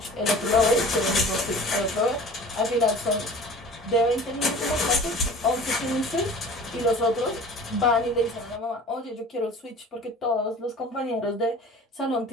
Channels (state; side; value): normal; both; correlation 0.43